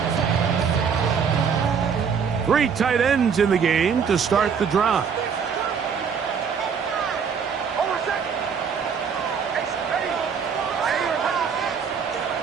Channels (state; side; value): quieter; left; 6.6 dB